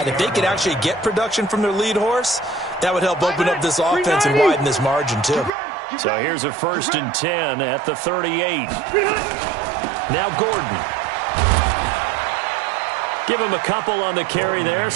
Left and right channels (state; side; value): drops out; left; at 5.5 s